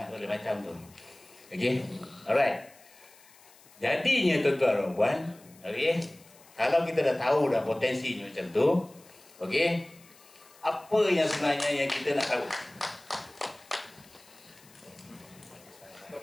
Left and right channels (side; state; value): left; noise; hiss, 25 dB below the sound